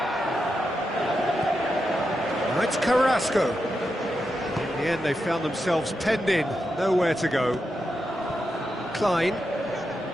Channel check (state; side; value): normal; both; correlation 0.87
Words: Now it's Carrasco. In the end they found themselves penned in, nowhere to go. Klein.